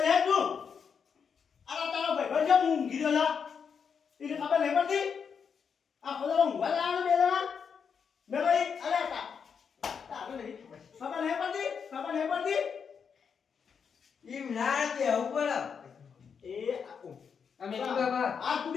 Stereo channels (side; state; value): right; quieter; 6.5 dB